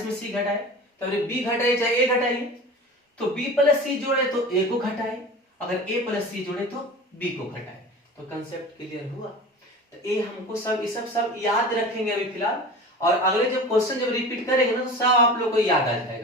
में सी घटाए, तो बी घटाइए चाहे ए घटाइए, तो b प्लस सी जोड़े तो a को घटाए, अगर a प्लस सी जोड़े तो b को घटाए। तो कंसेप्ट क्लियर हुआ। तो ये हमको सब याद रखेंगे अभी फिलहाल, और अगले जब क्वेश्चन जब रिपीट करेंगे ना तो सब आप लोग को याद आ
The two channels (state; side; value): normal; both; correlation 0.35